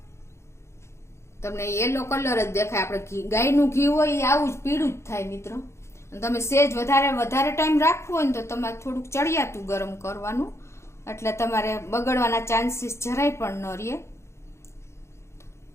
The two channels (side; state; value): right; late; 0.13 ms